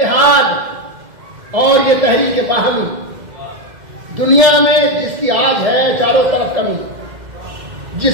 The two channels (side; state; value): left; late; 2.1 ms